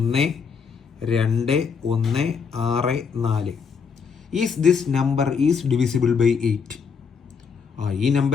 Is this number is divisible by 8? ഈ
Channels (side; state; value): right; quieter; 5.9 dB